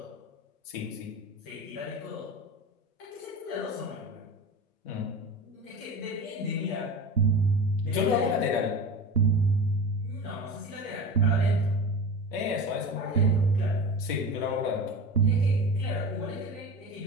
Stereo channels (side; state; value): both; normal; correlation 0.31